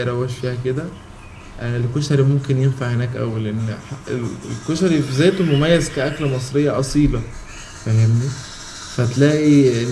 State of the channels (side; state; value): both; identical; correlation 1.00